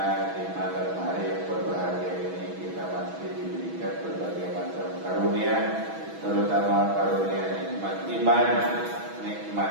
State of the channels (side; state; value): left; late; 6.1 ms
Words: di malam hari yang berbahagia ini kita masih diberikan berbagai macam karunia, terutama karunia nikmat iman,